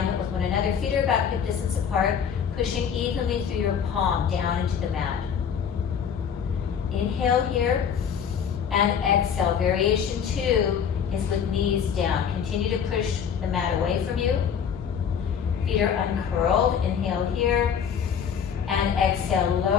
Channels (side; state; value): right; quieter; 7.6 dB